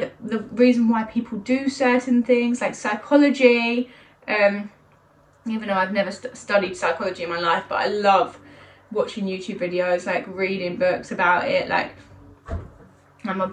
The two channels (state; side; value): identical; both; correlation 1.00